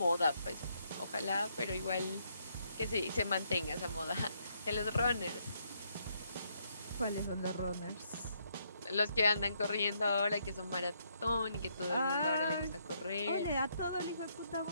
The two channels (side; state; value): both; inverted; correlation -0.74